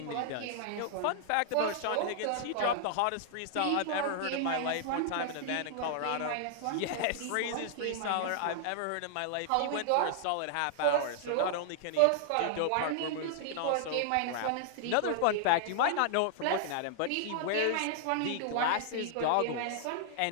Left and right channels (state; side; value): different; both; correlation -0.01